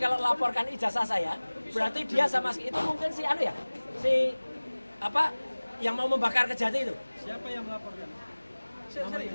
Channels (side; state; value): both; inverted; correlation -1.00